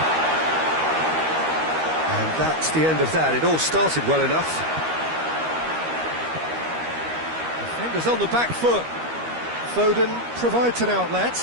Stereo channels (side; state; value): left; late; 13 ms